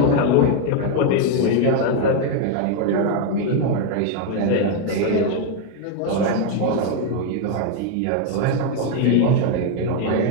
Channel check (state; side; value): different; both; correlation 0.01